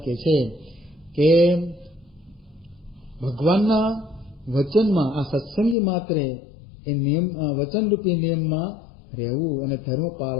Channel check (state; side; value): drops out; right; at 5.8 s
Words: કહે છે કે ભગવાનના વચનમાં આ સત્સંગી માત્રે એ નિયમ વચનરૂપી નિયમમાં રહેવું અને ધર્મ